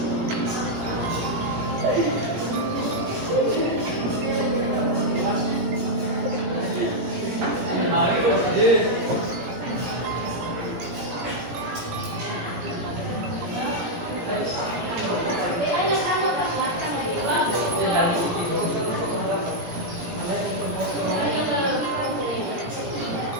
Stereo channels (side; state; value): left; late; 17 ms